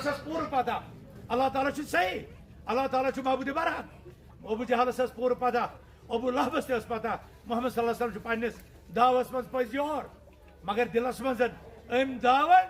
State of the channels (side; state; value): both; identical; correlation 1.00